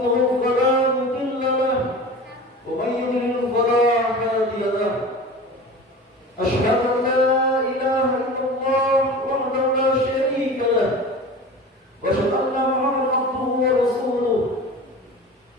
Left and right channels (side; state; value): both; normal; correlation 0.35